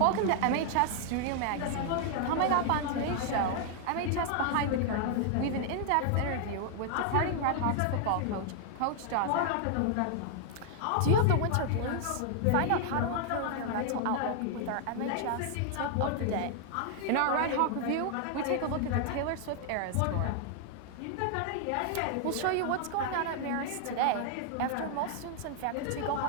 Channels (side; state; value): both; different; correlation 0.00